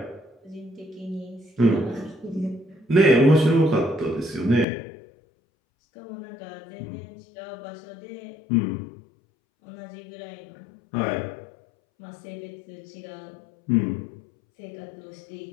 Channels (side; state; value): right; drops out; at 4.7 s